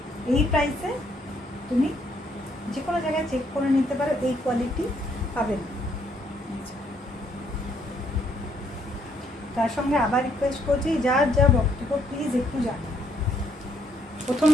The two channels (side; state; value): both; normal; correlation 0.70